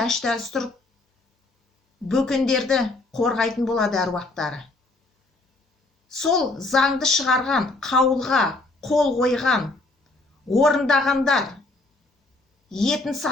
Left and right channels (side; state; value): right; quieter; 3.1 dB